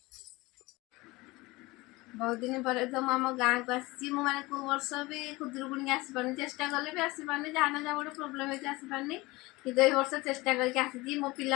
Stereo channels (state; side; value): quieter; right; 21.9 dB